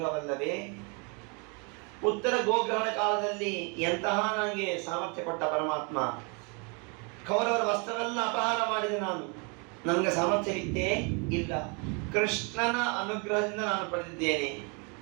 ಉತ್ತರ ಗೋಗ್ರಹಣ ಕಾಲದಲ್ಲಿ ಎಂತಹ ನನಗೆ ಸಾಮರ್ಥ್ಯ ಕೊಟ್ಟ ಪರಮಾತ್ಮ. ಕೌರವರ ವಸ್ತ್ರವೆಲ್ಲ ಅಪಹಾರ ಮಾಡಿದೆ ನಾನು, ನನಗೆ ಸಾಮರ್ಥ್ಯವಿತ್ತೇ ಇಲ್ಲ. ಕೃಷ್ಣನ ಅನುಗ್ರಹದಿಂದ ನಾನು ಪಡೆದಿದ್ದೇನೆ.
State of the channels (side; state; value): left; quieter; 33.8 dB